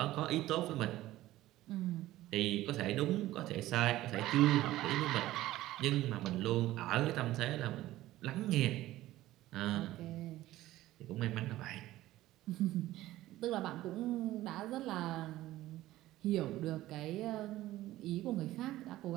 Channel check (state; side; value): quieter; left; 15.7 dB